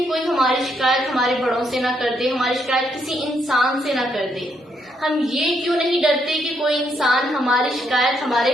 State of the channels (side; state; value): both; normal; correlation 0.75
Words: کوئی ہماری شکایت ہمارے بڑوں سے نہ کر دے، ہماری شکایت کسی انسان سے نہ کر دے۔ ہم یہ کیوں نہیں ڈرتے کہ کوئی انسان ہماری شکایت